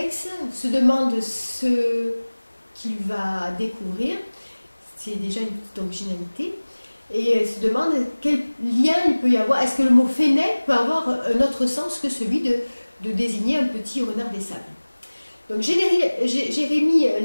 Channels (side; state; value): both; inverted; correlation -1.00